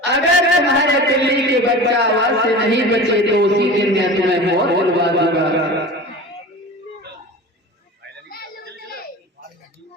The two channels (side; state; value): both; normal; correlation 0.34